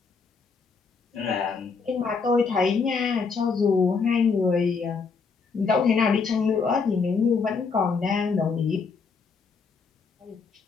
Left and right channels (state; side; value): quieter; right; 5.0 dB